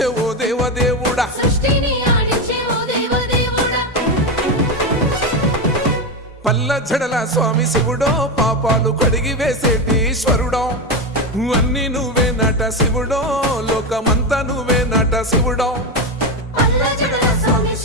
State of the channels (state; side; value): normal; both; correlation 0.13